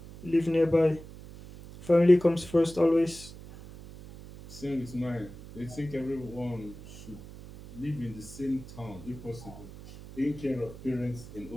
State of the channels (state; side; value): noise; right; hum, 16 dB below the sound